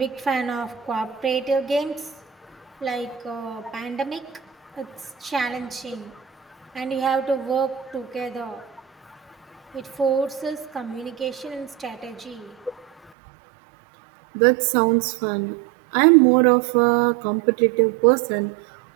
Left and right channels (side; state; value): left; drops out; at 13.1 s